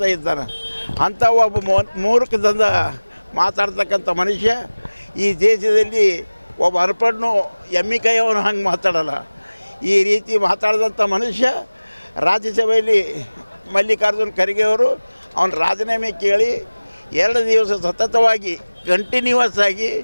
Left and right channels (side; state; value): both; inverted; correlation -1.00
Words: ಇದ್ದಾನೆ. ಅಂಥ ಒಬ್ಬ ಮೂರ್ಖದಿಂದ ಮಾತಾಡ್ತಕ್ಕಂಥ ಮನುಷ್ಯ ಈ ದೇಶದಲ್ಲಿ ಒಬ್ಬ ಅರ್ಪಣ್ಣು ಎಮ್ಮಿ ಕೈಯವನು ಹಂಗೆ ಮಾತಾಡಲ್ಲ. ಈ ರೀತಿ ಮಾತಾಡಿದಂಥ ಮನುಷ್ಯ ರಾಜ್ಯಸಭೆಯಲ್ಲಿ ಮಲ್ಲಿಕಾರ್ಜುನ್ ಖರ್ಗೆ ಅವರು ಅವನ ರಾಜೀನಾಮೆ ಕೇಳಿ 2 ದಿವಸ ಸತತವಾಗಿ ಕಂಟಿನ್ಯೂವಸ್ ಆಗಿ